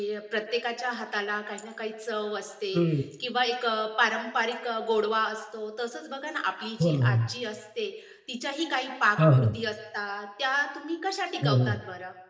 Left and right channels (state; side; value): identical; both; correlation 1.00